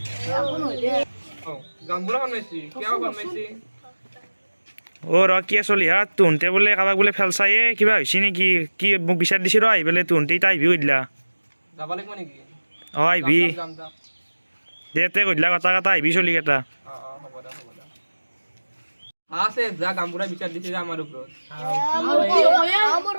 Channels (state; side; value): inverted; both; correlation -1.00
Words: ৰ কি চলি হা তুহতে বোলে কাৰোবাক বোলে ফেলচায়ে কিবা হৈছে নেকি কি মোক বিচাৰ দিছি ৰ আহি পেলাই তুহতে এতিয়া আহিবি সুধিলা যাব লাগিব নেকি অঁ আহিবি যাম যাম দে তে সুধিলা কথা কথা আহিবি চলিকেইটা হ'ব দে আছে যা গামবুঢ়া বিচাৰ দিছে আমাৰ ওপৰত